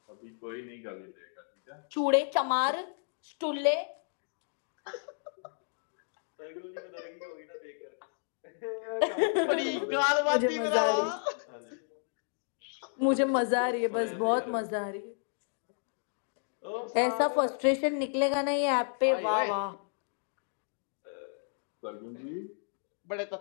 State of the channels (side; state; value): right; silent; digital silence